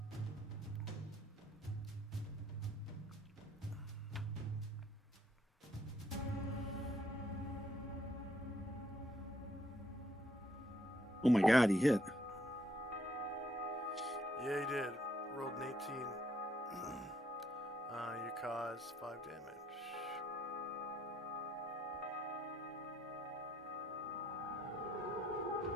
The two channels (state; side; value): normal; both; correlation 0.70